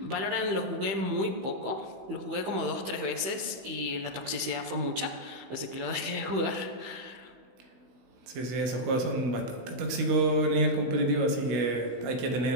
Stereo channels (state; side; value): late; left; 15 ms